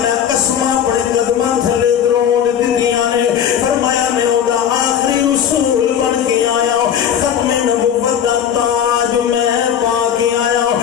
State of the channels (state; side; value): quieter; right; 8.9 dB